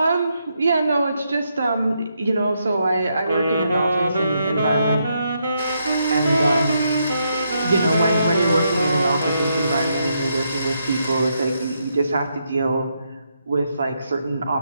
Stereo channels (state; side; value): inverted; both; correlation -0.79